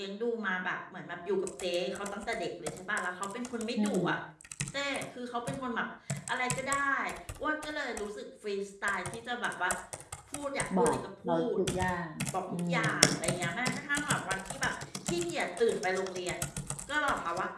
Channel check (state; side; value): identical; both; correlation 1.00